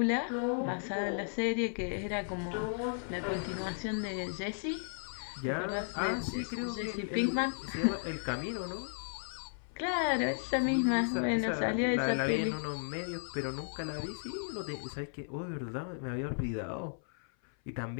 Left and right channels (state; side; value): silent; right; 55 dB below the other